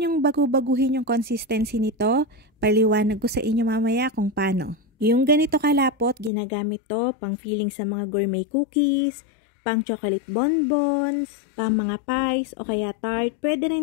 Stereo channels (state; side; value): drops out; right; at 6.3 s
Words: bagu-baguhin yung consistency nito. Paliwanag ko sa inyo mamaya kung paano. Yung ganito kalapot, ginagamit to pang filling sa mga gourmet cookies, pang chocolate bonbons, pang mga pies o kaya tart. Pwede